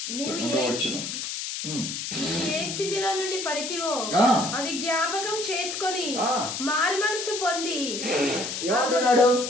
ఏ స్థితిలో నుండి పడితివో అది జ్ఞాపకం చేసుకొని మారు మనసు పొంది. ఏమంటున్నాడు?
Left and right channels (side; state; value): left; noise; hiss, 5 dB below the sound